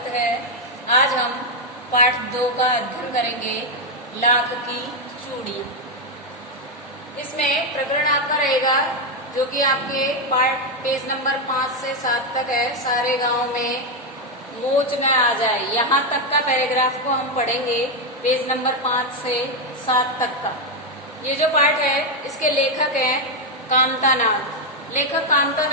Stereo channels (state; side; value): normal; both; correlation 0.04